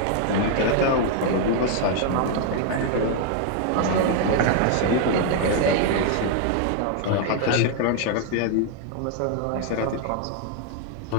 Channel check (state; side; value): different; both; correlation 0.00